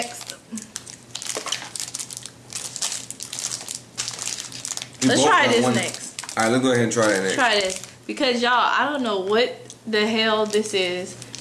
Let's try this next. Alright, let's go ahead and try that next. Try this. Because y'all, I don't know what the hell this is.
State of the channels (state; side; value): identical; both; correlation 1.00